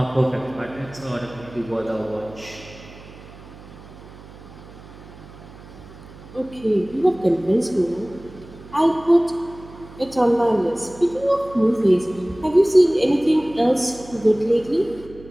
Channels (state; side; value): noise; right; hum, 19 dB below the sound